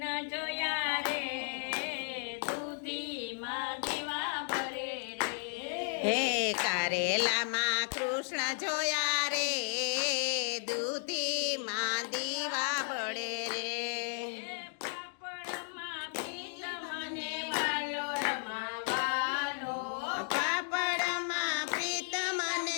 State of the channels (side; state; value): right; silent; 55 dB below the other